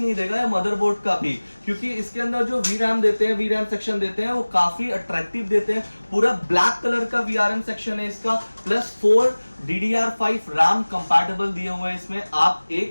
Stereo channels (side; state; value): both; inverted; correlation -1.00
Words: देगा मदरबोर्ड का भी, क्योंकि इसके अंदर जो VRAM देते हैं, VRAM सेक्शन देते हैं, वो काफी अट्रैक्टिव देते हैं। पूरा ब्लैक कलर का VRM सेक्शन है इसका, प्लस 4 DDR5 RAM कंपैटिबल दिए हुए हैं इसमें। आप